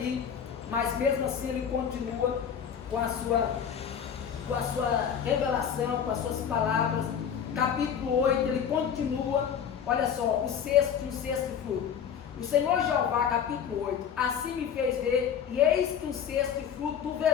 mas mesmo assim ele continua com a sua revelação, com as suas palavras. Capítulo 8, ele continua, olha só, um sexto fruto. O Senhor Jeová, capítulo 8, assim me fez ver, e eis que um sexto fruto do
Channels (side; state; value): right; quieter; 8.0 dB